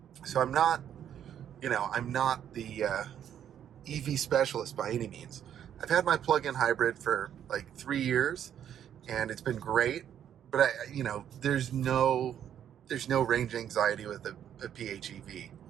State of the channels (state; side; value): quieter; left; 9.7 dB